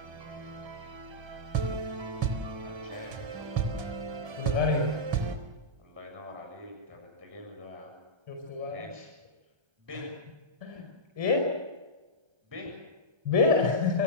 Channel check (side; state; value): left; late; 1.3 ms